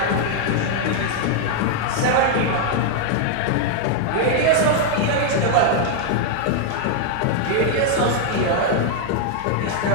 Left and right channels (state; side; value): different; both; correlation 0.00